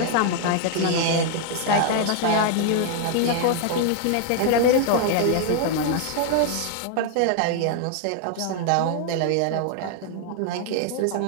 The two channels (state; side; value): different; both; correlation 0.00